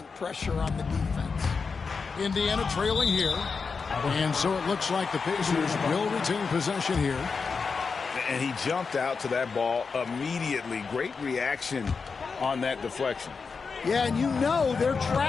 pressure on the defense. Indiana trailing here. And so it looks like the Pacers will retain possession here. And he jumped out to that ball immediately. Great reaction on that deflection. Yeah, and you know they're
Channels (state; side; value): quieter; right; 5.0 dB